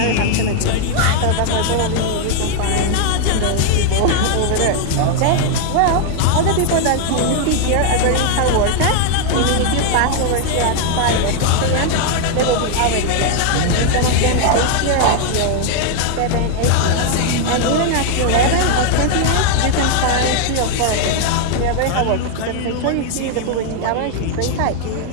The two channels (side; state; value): both; different; correlation 0.00